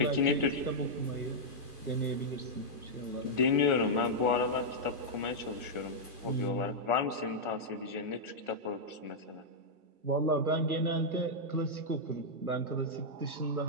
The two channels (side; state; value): left; late; 1.4 ms